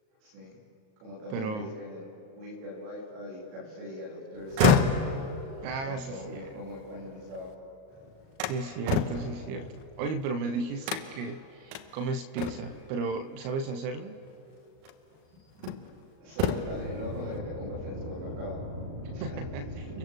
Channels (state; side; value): late; left; 38 ms